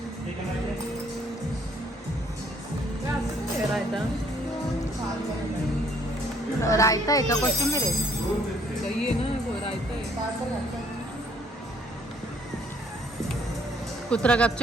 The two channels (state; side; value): normal; both; correlation 0.63